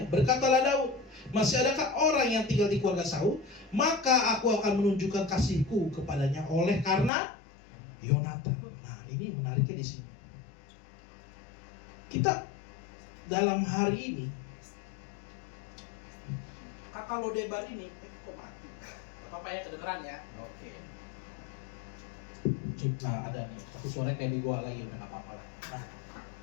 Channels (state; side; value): drops out; right; at 7.1 s